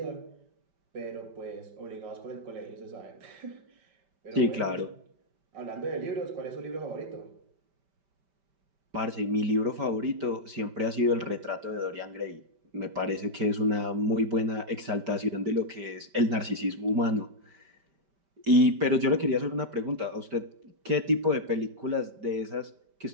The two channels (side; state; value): left; late; 5.1 ms